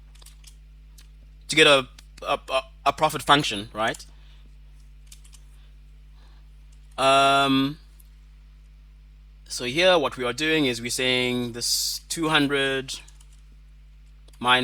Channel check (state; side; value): identical; both; correlation 1.00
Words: to get a profit function, right? So here what we are doing is we're saying this 200